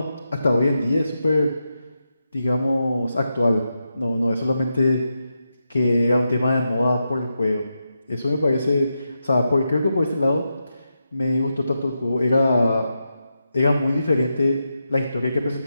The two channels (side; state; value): both; inverted; correlation -0.87